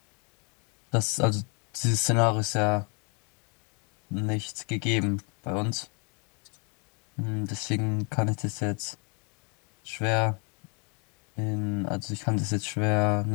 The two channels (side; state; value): right; quieter; 34.9 dB